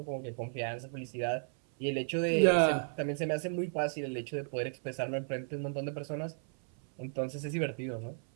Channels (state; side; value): silent; left; 55 dB below the other